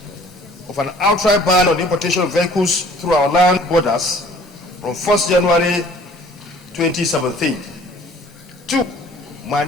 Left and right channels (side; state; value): both; normal; correlation 0.53